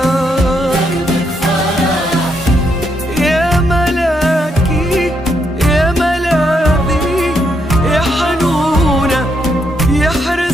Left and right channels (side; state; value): both; normal; correlation 0.77